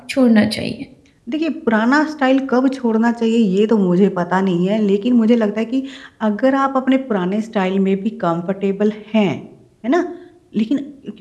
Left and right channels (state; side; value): identical; both; correlation 1.00